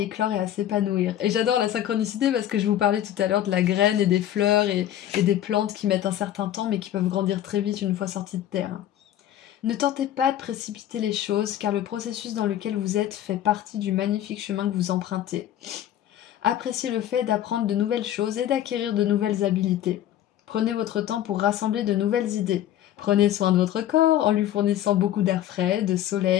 et à s'épanouir. Et j'adore la synchronicité parce que je vous parlais tout à l'heure de la graine et des fleurs et des plantes qui mettent un certain temps mais qui peuvent grandir très vite une fois sorties de terre. Ne tentez pas de précipiter les choses car le processus dans lequel vous êtes fait partie du magnifique chemin que vous empruntez. Appréciez le fait d'apprendre de nouvelles choses et d'acquérir de nouvelles habiletés. Prenez votre temps pour rassembler de nouvelles idées. Prenez soin de votre corps en lui fournissant beaucoup d'air frais, de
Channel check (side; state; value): right; quieter; 11.9 dB